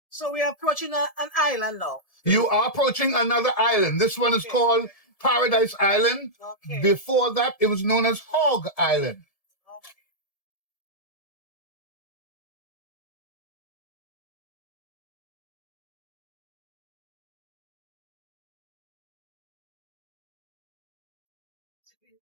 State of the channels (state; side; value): late; right; 1.7 ms